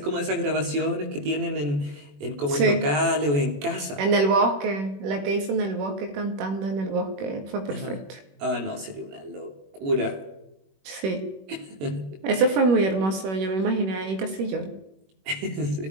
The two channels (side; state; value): left; late; 21 ms